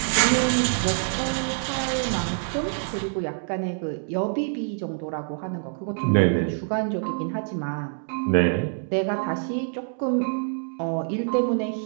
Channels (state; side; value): silent; left; 61 dB below the other